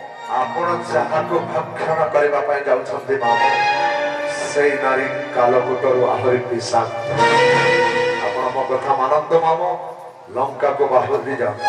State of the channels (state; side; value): identical; both; correlation 1.00